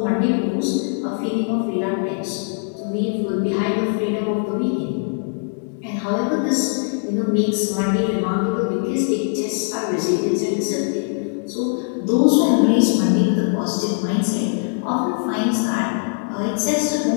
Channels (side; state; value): right; silent; 65 dB below the other